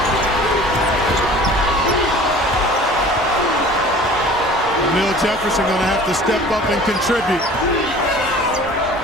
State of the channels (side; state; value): both; normal; correlation 0.45